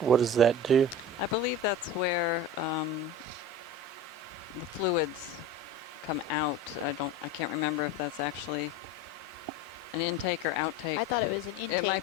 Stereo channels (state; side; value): normal; both; correlation 0.33